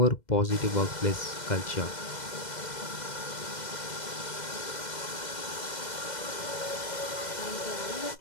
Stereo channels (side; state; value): right; late; 2.0 ms